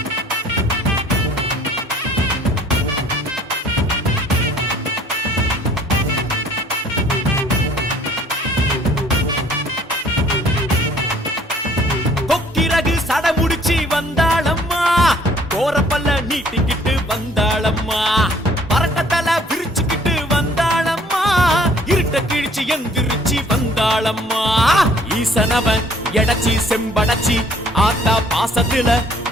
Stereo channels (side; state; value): both; normal; correlation 0.57